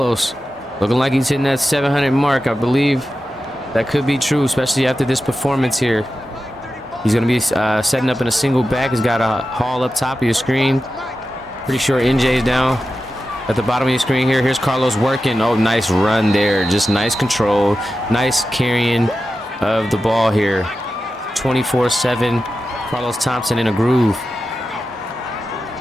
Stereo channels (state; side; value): normal; both; correlation 0.92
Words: looking like he's hitting that 700 mark. I believe that could be true, especially after this performance here. He's going to be setting up in a single back. He's got a haul up top of your screen. Pretty sure NJ is down at the bottom of your screen here. Here's Carlos working. Oh, nice run there. Just nice control. Nice carrying of the ball here. 24-7. Carlos Thompson in a groove.